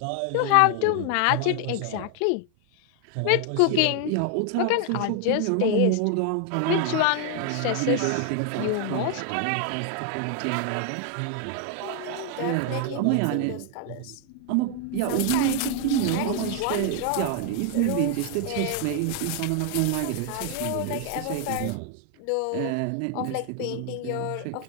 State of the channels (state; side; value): different; both; correlation 0.00